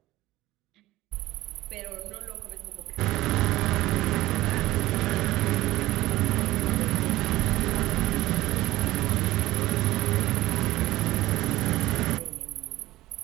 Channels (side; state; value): left; quieter; 17.1 dB